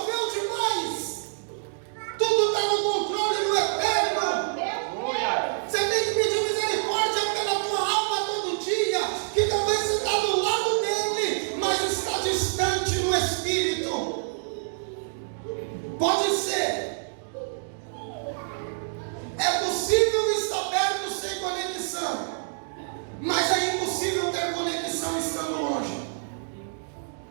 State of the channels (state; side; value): silent; left; digital silence